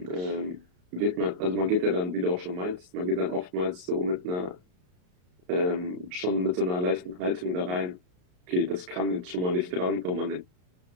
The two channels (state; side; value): late; left; 33 ms